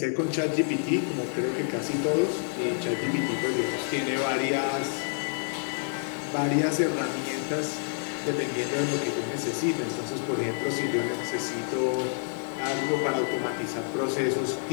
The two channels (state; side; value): silent; right; 59 dB below the other